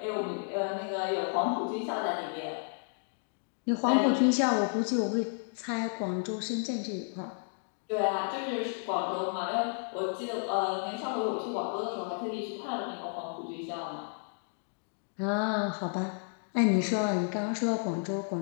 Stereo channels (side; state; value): right; silent; 56 dB below the other